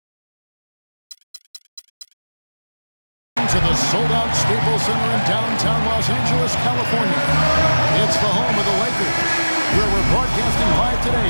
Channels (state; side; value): inverted; both; correlation -1.00